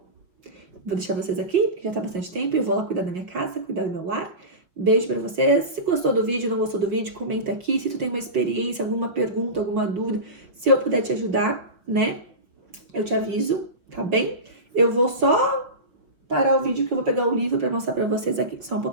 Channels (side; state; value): left; late; 5.8 ms